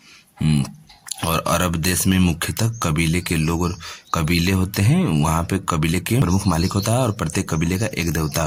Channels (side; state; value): both; identical; correlation 1.00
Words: और अरब देश में मुख्यतः कबीले के लोग और कबीले होते हैं। वहाँ पे कबीले के प्रमुख मालिक होता है और प्रत्येक कबीले का एक देवता